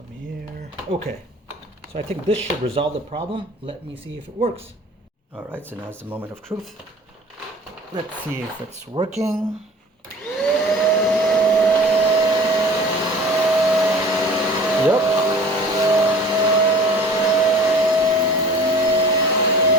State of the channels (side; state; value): both; normal; correlation 0.44